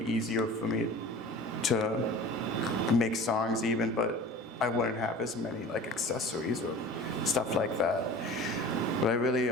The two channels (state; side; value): normal; both; correlation 0.40